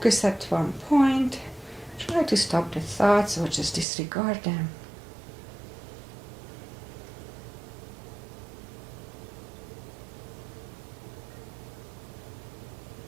at one point. Try to stop the thoughts or just disregard them.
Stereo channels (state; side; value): drops out; left; at 3.9 s